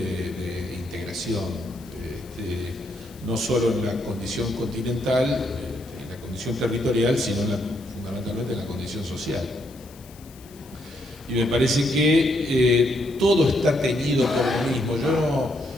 integración, no solo en la condición continental, en la condición territorial, sino fundamentalmente en la condición social. Y me parece que todo está teñido por lo mismo. Yo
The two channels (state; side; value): noise; left; hiss, 23 dB below the sound